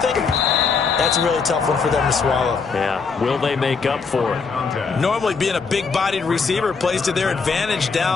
that's a really tough one for them to swallow. Yeah, will they make up for it? Normally being a big-bodied receiver plays to their advantage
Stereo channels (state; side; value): quieter; right; 5.0 dB